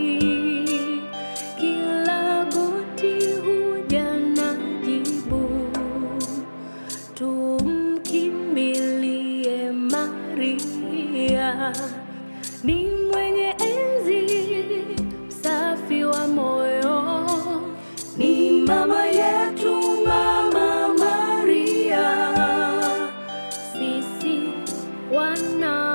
Kila goti huja na jibu, tumkimbilie Maria. Ni mwenye enzi, msafi wa moyo, ni mama yetu, Mama Maria. Sisi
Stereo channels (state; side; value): inverted; both; correlation -1.00